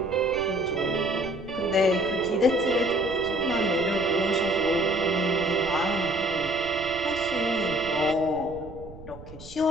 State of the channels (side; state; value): right; noise; rumble, 16 dB below the sound